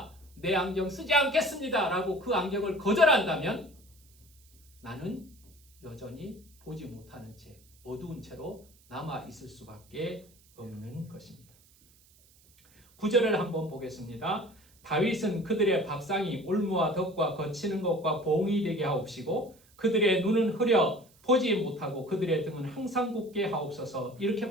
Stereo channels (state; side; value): noise; right; hiss, 29 dB below the sound